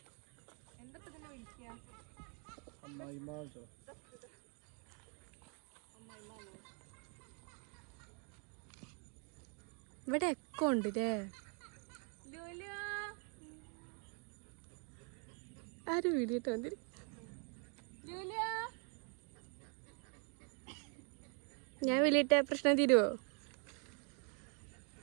ഇവിടെ എക്കോ ഉണ്ട് ല്ലേ? ആരും വീഡിയോ വന്നിരി. ഞാൻ വലിയിട്ട പ്രശ്നം തീരുവോ?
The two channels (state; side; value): quieter; left; 39.0 dB